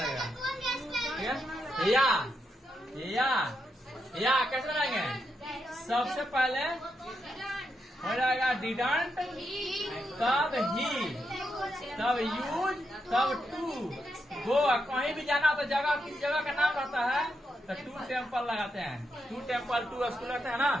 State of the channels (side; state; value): both; normal; correlation 0.83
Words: ठीक है? या कैसे लगाएंगे? सबसे पहले हो जाएगा डिडंट, तब ही, तब यूज, तब टू। गो, कहीं भी जाना तो जगह, किस जगह का नाम रहता है तो टू टेम्पल लगाते हैं। टू टेम्पल, टू स्कूल रहते हैं ना?